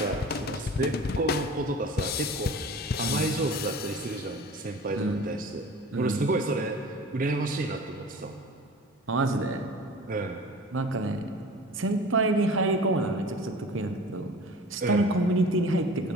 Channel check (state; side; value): normal; both; correlation 0.40